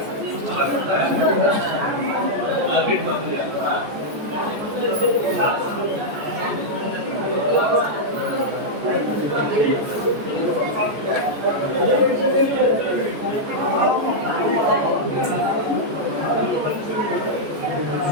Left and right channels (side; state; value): left; late; 14 ms